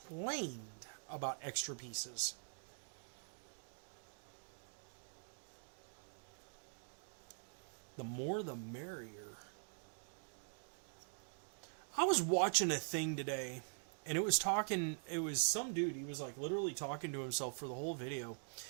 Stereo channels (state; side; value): silent; left; digital silence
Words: about extra pieces. The more the merrier. I was watching a thing today, and it was some dude, he was like literally talking to himself for the whole video.